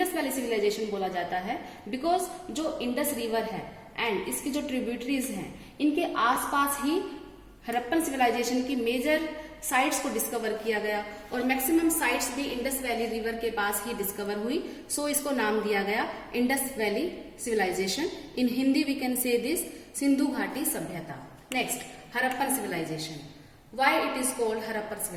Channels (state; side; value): identical; both; correlation 1.00